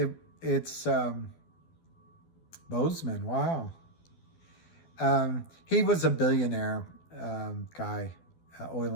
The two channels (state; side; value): late; right; 12 ms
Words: it's Bozeman, wow. He was a billionaire guy, oil